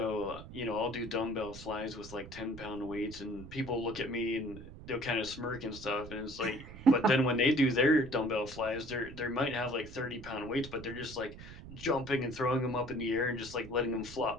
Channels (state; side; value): noise; right; rumble, 14 dB below the sound